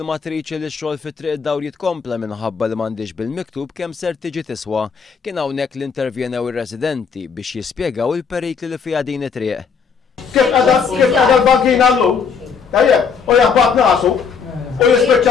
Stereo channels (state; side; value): quieter; right; 6.0 dB